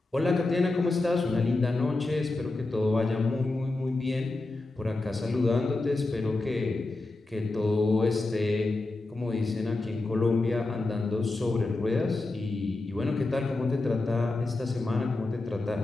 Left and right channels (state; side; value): quieter; right; 3.1 dB